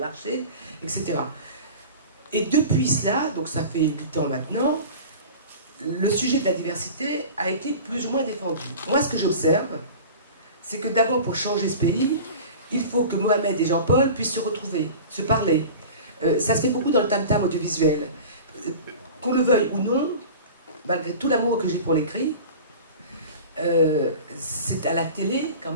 etc. Et depuis cela, donc ça fait 8 ans maintenant, le sujet de la diversité a été plus ou moins défendu. Moi, ce que j'observe, c'est que d'abord, pour changer ce pays, il faut que Mohamed et Jean-Paul puissent se retrouver, se parler. Ça se fait beaucoup dans le tam-tam audiovisuel. Qu'on le veuille ou non, malgré tout l'amour que j'ai pour l'écrit, c'est à la télé, quand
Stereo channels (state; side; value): inverted; both; correlation -0.37